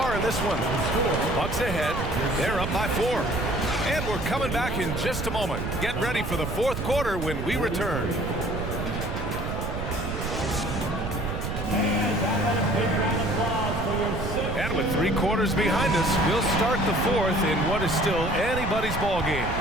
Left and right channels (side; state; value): right; noise; rumble, 4 dB below the sound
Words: in this one. Bucks ahead. They're up by 4. And we're coming back in just a moment. Get ready for the 4th quarter when we return. And with 3 quarters behind us, we'll start the 4th in what is still anybody's ball game.